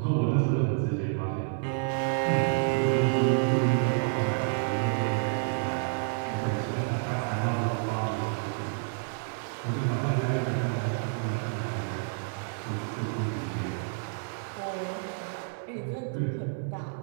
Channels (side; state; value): left; silent; 57 dB below the other